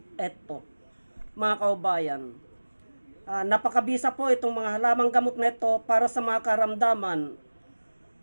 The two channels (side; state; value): both; inverted; correlation -1.00